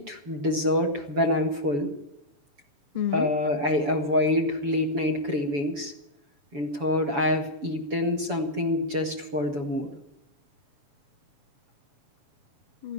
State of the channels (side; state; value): left; late; 7.0 ms